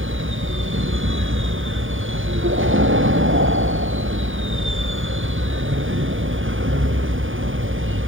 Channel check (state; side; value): late; left; 0.58 ms